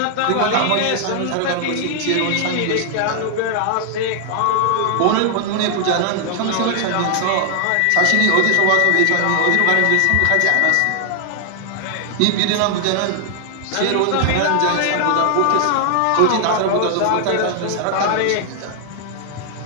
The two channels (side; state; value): both; different; correlation 0.00